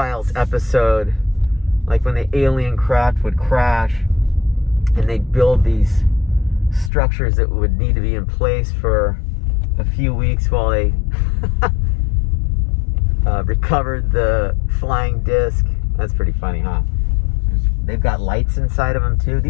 episode, like when the alien craft would crash and they'd build these structures that would need to be in place for a few weeks while they recovered the flying disc. That's pretty funny, huh? They've got lights inside of them too.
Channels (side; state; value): right; drops out; at 6.9 s